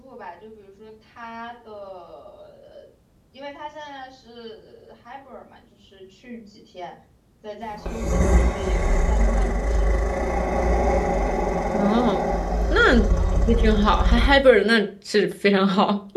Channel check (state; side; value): identical; both; correlation 1.00